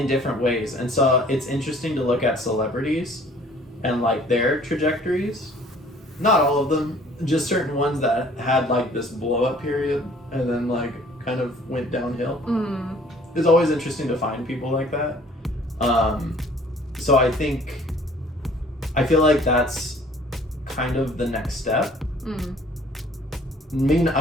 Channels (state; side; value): normal; both; correlation 0.54